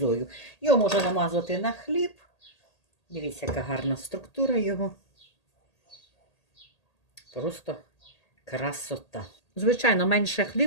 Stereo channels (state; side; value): late; right; 1.8 ms